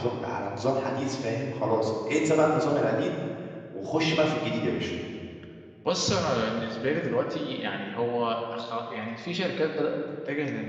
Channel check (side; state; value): both; identical; correlation 1.00